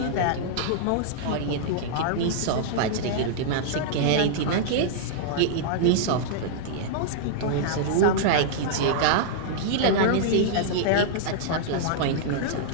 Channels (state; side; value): different; both; correlation -0.02